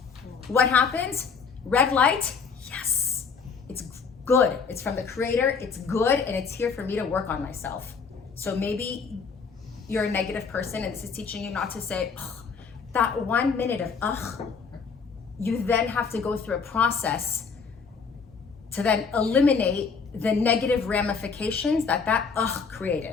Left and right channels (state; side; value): quieter; right; 5.5 dB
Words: What happens? Red light. Yes. It's good. It's from the Creator. It's good. And it's here for me to work on myself. So maybe you're a negative person and this is teaching you not to say, ugh, that 1 minute of ugh. You then have to go through a process to then eliminate the negative ramifications that ugh